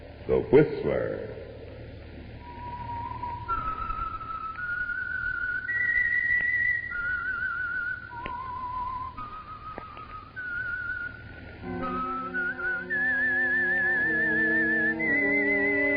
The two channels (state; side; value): identical; both; correlation 1.00